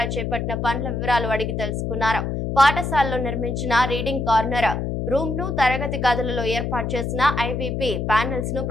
చేపట్టిన పనుల వివరాలు అడిగి తెలుసుకున్నారు. పాఠశాలలో నిర్మించిన రీడింగ్ కార్నర్ రూమ్ ను, తరగతి గదులలో ఏర్పాటు చేసిన IVP ప్యానెల్స్ ను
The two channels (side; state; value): left; noise; hum, 2 dB below the sound